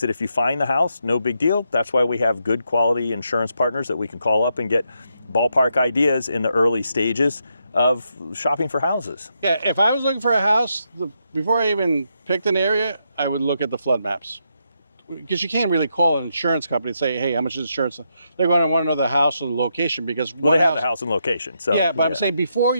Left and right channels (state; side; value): inverted; both; correlation -0.80